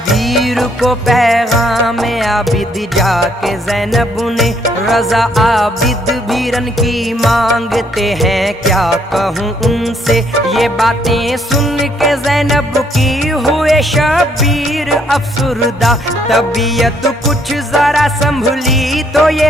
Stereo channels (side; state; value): both; normal; correlation 0.68